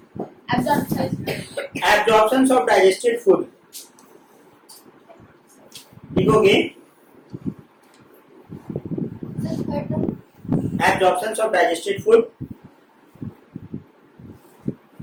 Absorptions of digested food. लिखोगे absorptions of digested food.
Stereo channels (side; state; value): both; identical; correlation 1.00